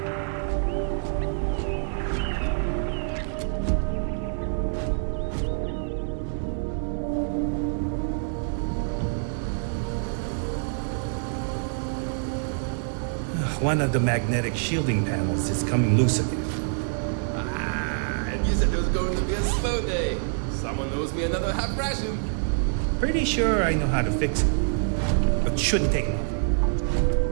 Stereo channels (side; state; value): left; silent; digital silence